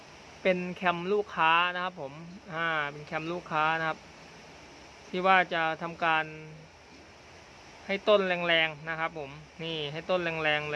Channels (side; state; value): both; identical; correlation 1.00